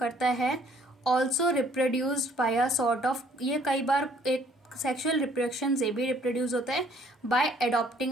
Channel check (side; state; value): both; normal; correlation 0.61